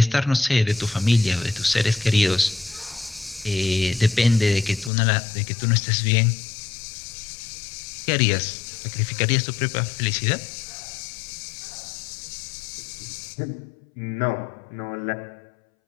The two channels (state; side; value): drops out; right; at 4.9 s